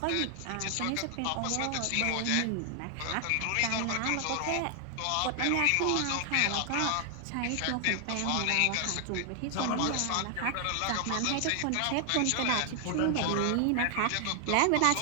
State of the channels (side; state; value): both; different; correlation 0.00